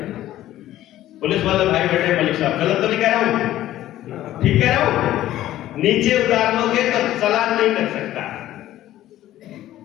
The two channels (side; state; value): right; quieter; 13.8 dB